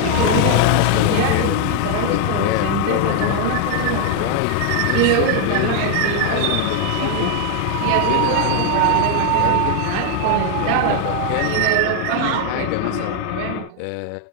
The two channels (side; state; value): both; different; correlation 0.00